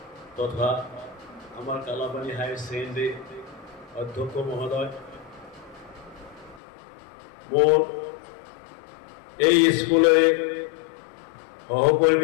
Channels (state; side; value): drops out; right; at 6.6 s